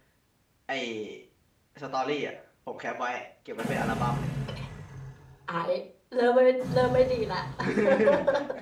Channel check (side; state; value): both; identical; correlation 1.00